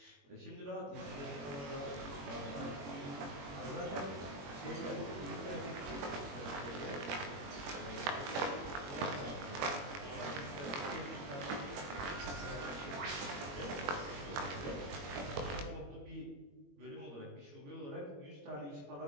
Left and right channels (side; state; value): left; late; 21 ms